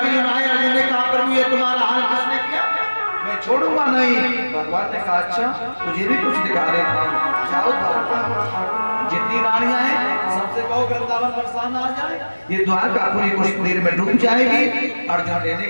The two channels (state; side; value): inverted; both; correlation -1.00